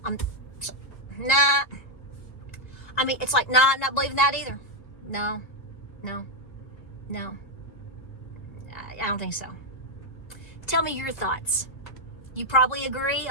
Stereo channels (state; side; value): late; right; 1.9 ms